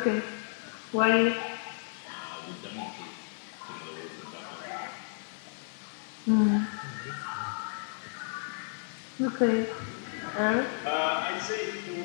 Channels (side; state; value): right; silent; digital silence